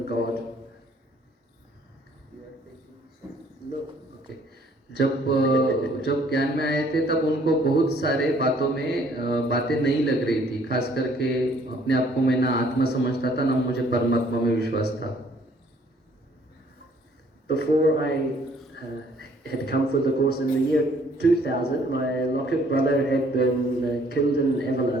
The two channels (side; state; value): both; normal; correlation 0.61